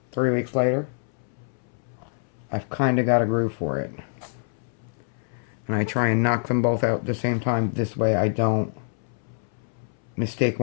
3 weeks later, I've kind of got a groove for it. And I try and knock them both out at the same time. This way I don't mistake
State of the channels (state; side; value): silent; right; 61 dB below the other